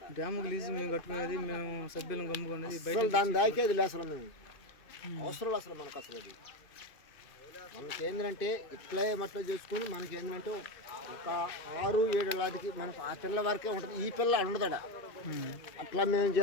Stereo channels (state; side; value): late; right; 2.6 ms